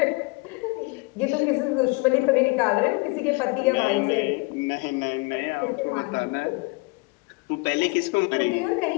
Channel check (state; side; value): quieter; right; 27.9 dB